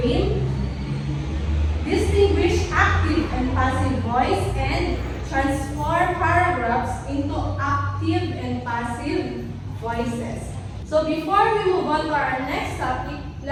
game, distinguish active and passive voice, and transform paragraphs into active and passive voices. So before we move on to our next topic,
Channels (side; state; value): both; identical; correlation 1.00